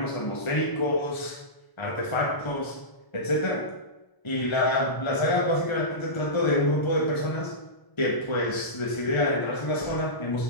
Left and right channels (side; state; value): right; late; 1.0 ms